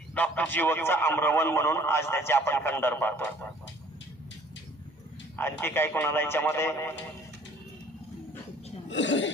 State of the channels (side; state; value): both; normal; correlation 0.55